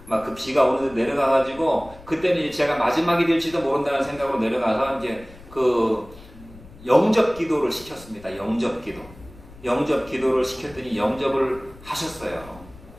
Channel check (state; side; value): noise; left; rumble, 21 dB below the sound